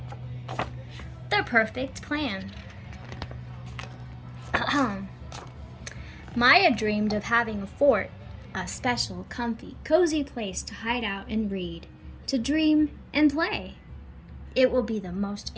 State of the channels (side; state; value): both; identical; correlation 1.00